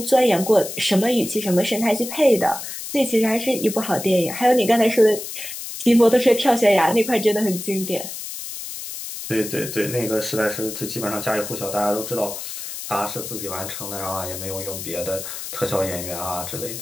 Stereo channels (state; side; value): noise; left; hiss, 8 dB below the sound